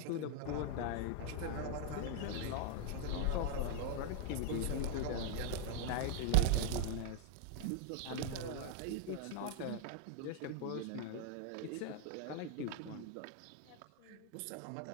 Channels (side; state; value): both; different; correlation 0.00